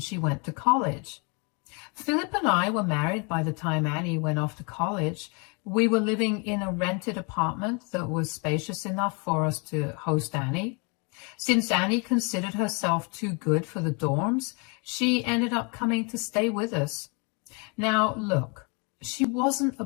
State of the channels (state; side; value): quieter; right; 33.2 dB